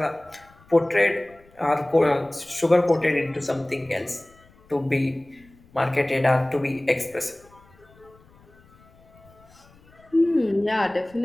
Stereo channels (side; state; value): left; noise; rumble, 28 dB below the sound